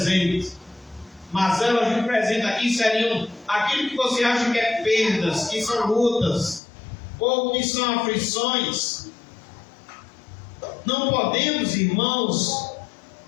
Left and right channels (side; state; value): right; drops out; at 6.6 s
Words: Mazelas do presente aqui seriam aquilo que você acha que é perdas, que são lutas, ou que são aflições. Não podemos, irmãos,